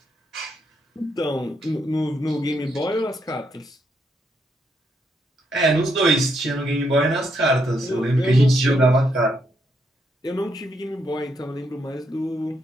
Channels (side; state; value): both; normal; correlation 0.77